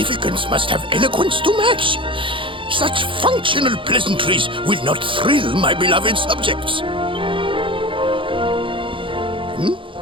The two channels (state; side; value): late; left; 0.25 ms